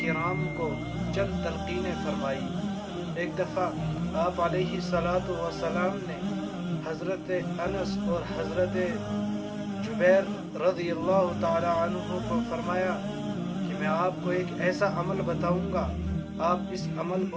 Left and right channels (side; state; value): both; identical; correlation 1.00